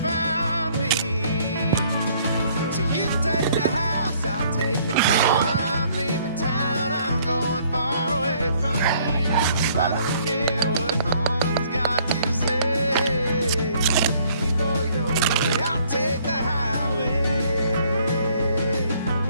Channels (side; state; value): both; inverted; correlation -0.62